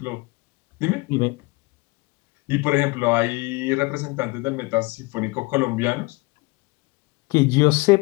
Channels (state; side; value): quieter; right; 24.7 dB